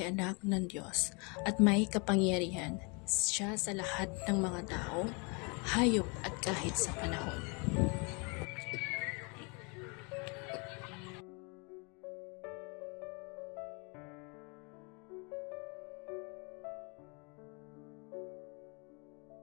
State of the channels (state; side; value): quieter; right; 32.1 dB